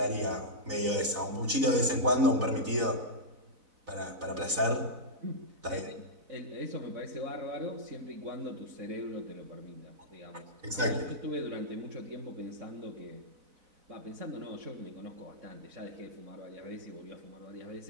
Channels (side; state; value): left; late; 4.0 ms